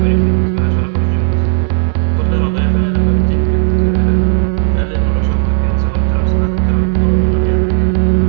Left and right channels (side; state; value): left; silent; digital silence